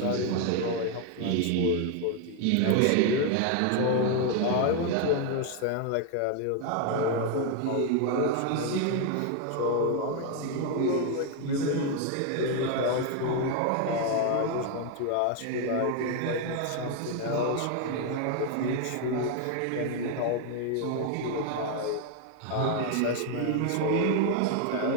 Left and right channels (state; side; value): different; both; correlation 0.01